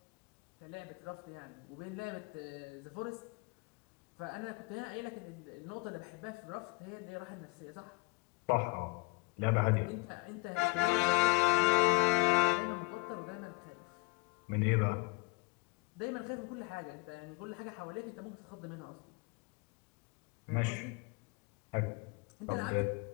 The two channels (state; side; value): quieter; right; 26.9 dB